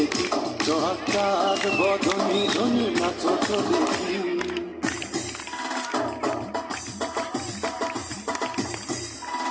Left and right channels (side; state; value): both; identical; correlation 1.00